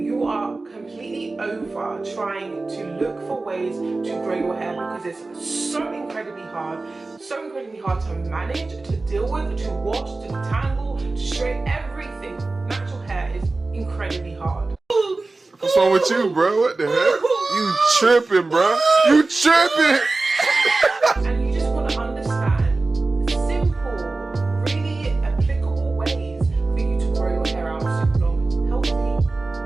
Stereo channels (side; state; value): left; quieter; 3.4 dB